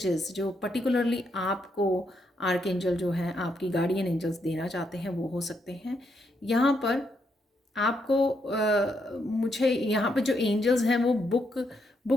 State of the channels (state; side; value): normal; both; correlation 0.78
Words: जो पर्टिकुलरली आपको आर्कएंजल जो है, आपकी गार्डियन एंजल्स देना चाहते हैं, वो हो सकते हैं। यहाँ पर आपको मुझे यहाँ पर जो एंजल्स हैं वो